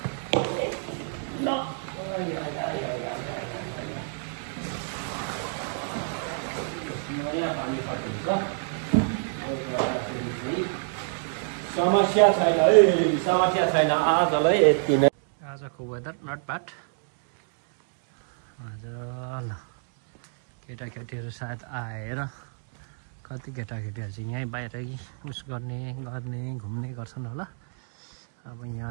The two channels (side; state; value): left; silent; digital silence